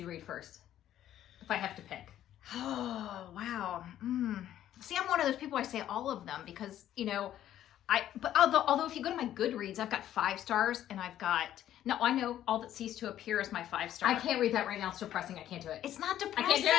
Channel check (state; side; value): quieter; right; 11.8 dB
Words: read first? If I have to pick. Oh, wow. See, I'm one of those people, I say all of them because, but although if you go to my Goodreads, I've got 5 stars and I know All That Ceased to Appear is my 5-star. I can't read that right now. It's depressing. I can't do it. It's not I depressing.